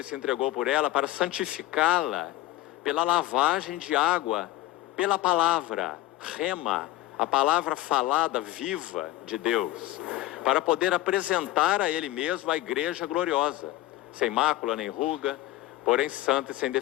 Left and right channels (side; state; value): right; quieter; 16.3 dB